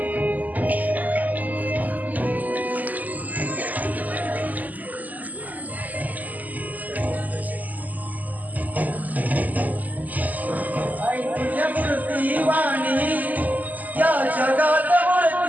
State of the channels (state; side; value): late; left; 0.080 ms